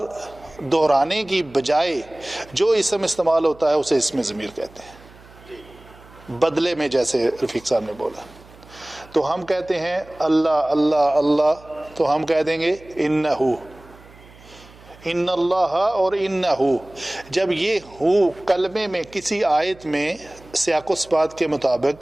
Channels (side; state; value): right; noise; hum, 23 dB below the sound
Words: دہرانے کی بجائے جو اسم استعمال ہوتا ہے اسے اسم ضمیر کہتے ہیں، بدلے میں، جیسے رفیق صاحب نے بولا۔ تو ہم کہتے ہیں اللہ اللہ اللہ، تو ہم کہہ دیں گے انہو، ان اللہ اور انہو۔ جب یہ ہو کلمے میں کسی آیت میں سیاق و سباق کے